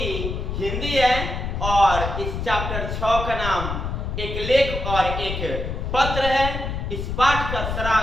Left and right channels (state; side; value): noise; left; rumble, 4 dB below the sound